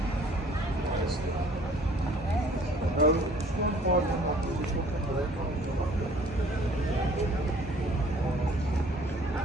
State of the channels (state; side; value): normal; both; correlation 0.54